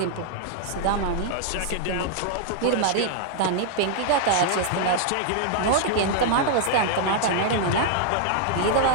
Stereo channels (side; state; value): both; different; correlation -0.01